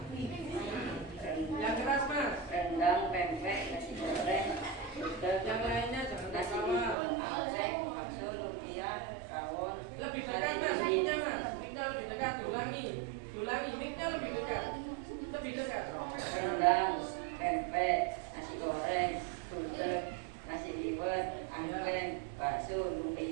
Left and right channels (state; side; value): drops out; left; at 7.0 s